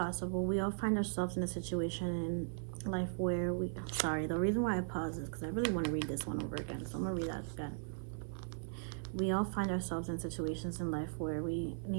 We all find ourselves in a situation in life where sorry, the reason why I pause is because I really want to read this one over again. So I'm going to read that again. We all find ourselves in situations in life where we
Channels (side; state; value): left; silent; 52 dB below the other